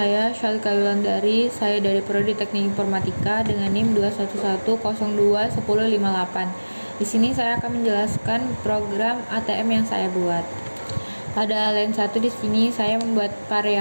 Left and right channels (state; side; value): inverted; both; correlation -1.00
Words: Syalika Yulandari. Saya dari Prodi Teknik Informatika dengan NIM 211021058. Di sini saya akan menjelaskan program ATM yang saya buat. Pada line 1 di sini saya membuat